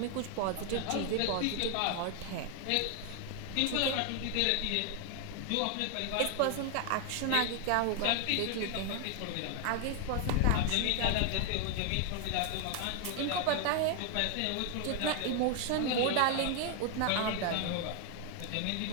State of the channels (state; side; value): different; both; correlation 0.01